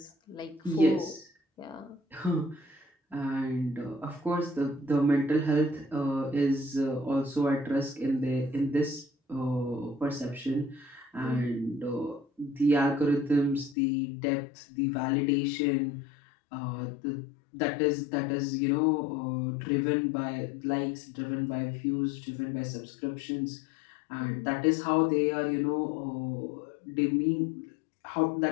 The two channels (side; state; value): right; drops out; at 13.8 s